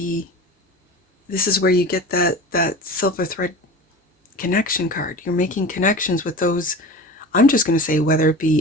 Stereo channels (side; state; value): both; normal; correlation 0.34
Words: this is where you get that silver thread connection card. You're making connections with those, I'm just going to say, whether it